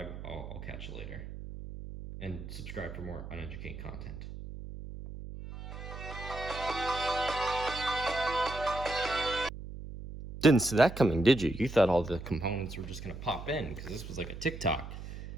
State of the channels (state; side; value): noise; right; hum, 10 dB below the sound